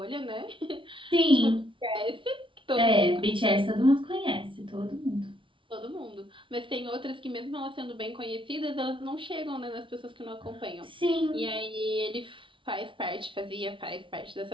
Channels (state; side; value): late; left; 0.25 ms